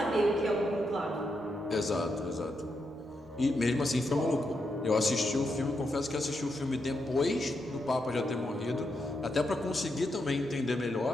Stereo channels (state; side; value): normal; both; correlation 0.83